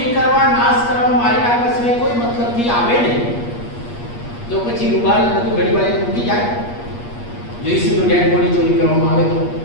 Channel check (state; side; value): late; right; 8.4 ms